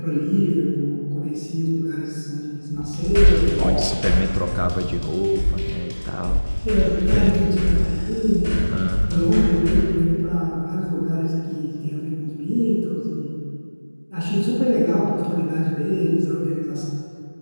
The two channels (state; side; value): inverted; both; correlation -1.00